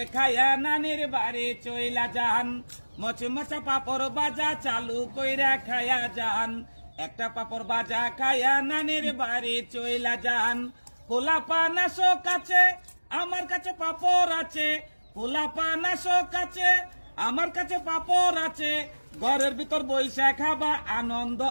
খায়া নানির বাড়ি চইলা যান, মচমচা পাপড় বাজা চালু কইরা খায়া যান, একটা পাপড় বাজা খায়া নানির বাড়ি চইলা যান। পোলাপা নাশো কাছে আমার কাছে পাপড় আছে, পোলাপা নাশো কাছে আমার কাছে পাপড় আছে, ঘরের ভিতর বইসা খাবা আনন্দ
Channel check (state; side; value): inverted; both; correlation -1.00